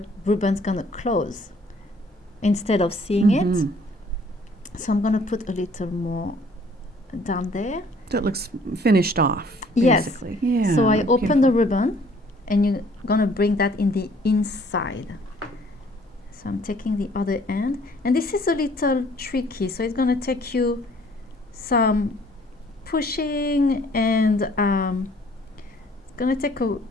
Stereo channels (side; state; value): both; normal; correlation 0.58